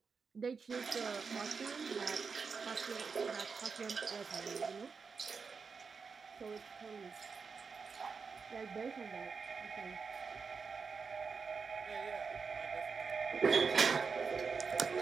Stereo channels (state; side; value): quieter; left; 5.3 dB